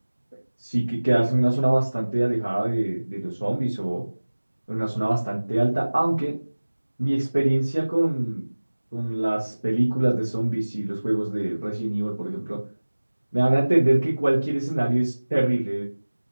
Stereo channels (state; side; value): inverted; both; correlation -1.00